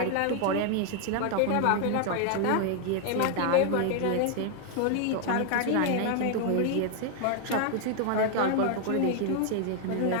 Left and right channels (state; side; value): different; both; correlation 0.00